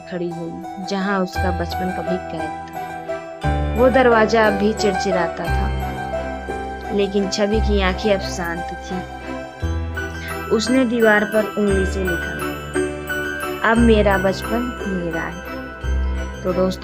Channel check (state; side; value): identical; both; correlation 1.00